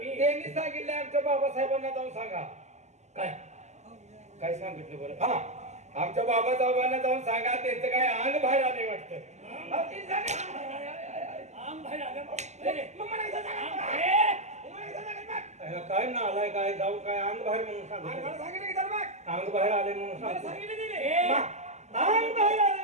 त्यांनी सांगितलंय आमच्या बाबासाहेबांना जाऊन सांगा काय काय सांगितलं बरं हा आमच्या बाबासाहेबांना जाऊन सांगा त्यांचं काय अंग बाहेर आले वाटतं आम बाहेर आलं. अरे, काय ना आलाय काय जाऊ काय अंग बाहेर म्हणून सांग अंग बाहेर आले म्हणून सांग अंग बाहेर आले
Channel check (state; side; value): late; left; 0.33 ms